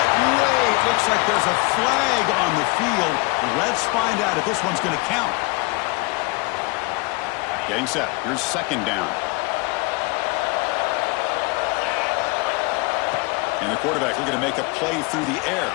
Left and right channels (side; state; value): right; quieter; 26.3 dB